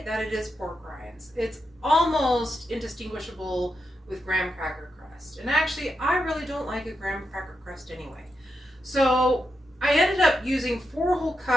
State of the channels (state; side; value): normal; both; correlation 0.85